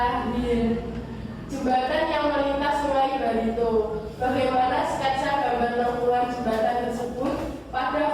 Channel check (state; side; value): identical; both; correlation 1.00